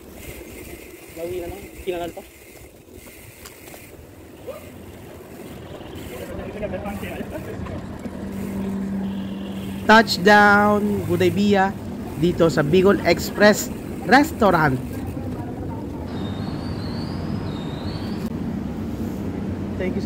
Pauwi na lang. Kinanan pa. Touchdown Gudaybiya dito sa Bicol Express Restaurant. Thank you,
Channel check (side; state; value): both; identical; correlation 1.00